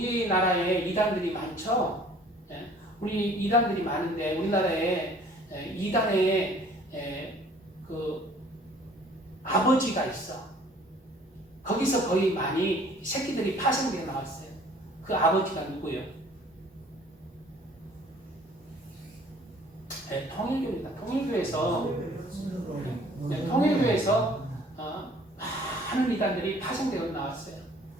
이단들이 많죠. 우리 이단들이 많은데 우리나라에 이단의 그 아버지가 있어. 거기서 거의 많이 새끼들이 파생되어 나왔어요. 그 아버지가 누구예요? 통일교입니다. 통일교에서 많은 이단들이 파생되어 나왔어요.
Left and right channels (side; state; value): both; normal; correlation 0.54